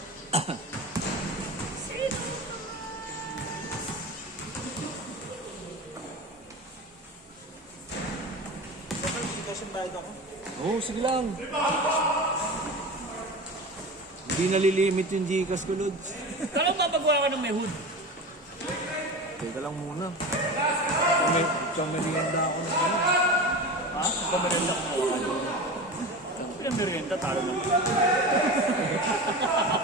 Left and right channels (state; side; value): normal; both; correlation 0.29